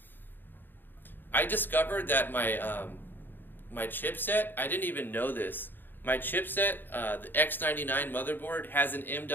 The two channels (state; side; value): late; right; 0.093 ms